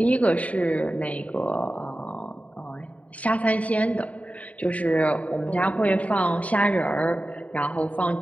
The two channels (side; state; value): right; late; 0.068 ms